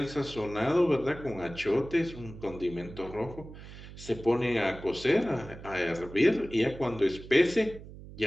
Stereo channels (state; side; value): noise; right; hum, 15 dB below the sound